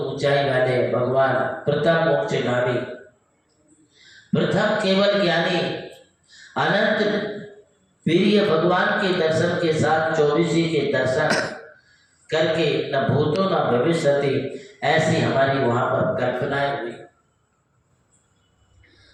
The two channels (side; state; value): both; identical; correlation 1.00